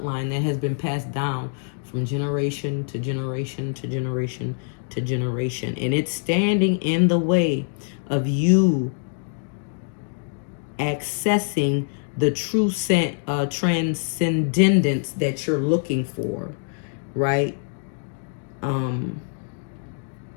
that has been passed down from generation to generation to generation to generation. And it's standing in the way of you accessing the true transcendence that you're looking for, right?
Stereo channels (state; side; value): silent; right; digital silence